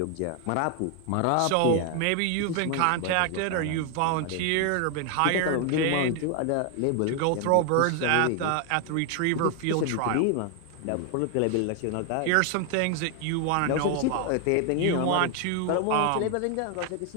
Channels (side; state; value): both; different; correlation 0.01